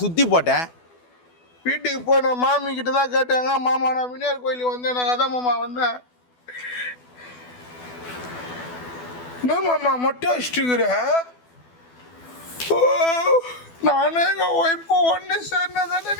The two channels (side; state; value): right; late; 12 ms